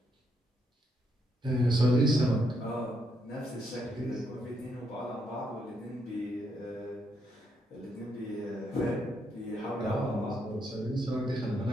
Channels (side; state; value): both; normal; correlation 0.76